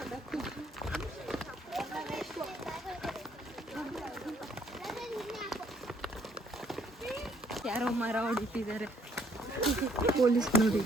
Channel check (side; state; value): both; normal; correlation 0.65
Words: ಯಾರೋ ಮರ ಹೊಡಿತಿದ್ದಾರೆ. ಪೊಲೀಸ್ ನೋಡಿ.